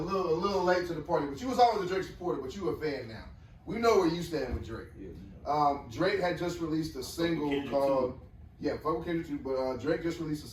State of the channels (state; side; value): identical; both; correlation 1.00